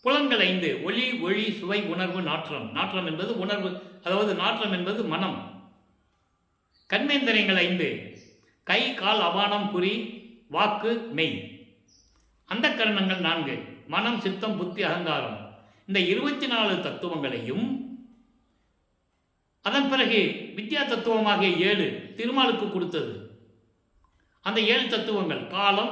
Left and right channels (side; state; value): both; identical; correlation 1.00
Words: புலன்கள் 5 ஒளி, ஒளி, சுவை, உணர்வு, நாற்றம். நாற்றம் என்பது உணர்வு, அதாவது நாற்றம் என்பது மனம். கண்மேந்திரியங்கள் 5 கை கால் அபானம் குறி வாக்கு மெய். அந்த கரணங்கள் 4: மனம், சித்தம், புத்தி, அகங்காரம். இந்த 24 தத்துவங்களையும் அதன் பிறகு வித்யா தத்துவமாகிய 7 திருமாலுக்கு கொடுத்தது. அந்த 7 தத்துவங்கள் காலம்,